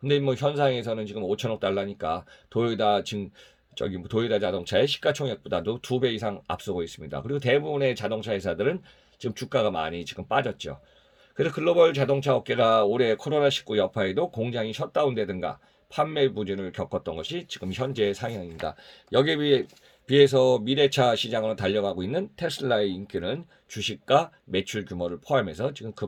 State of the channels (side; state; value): both; identical; correlation 1.00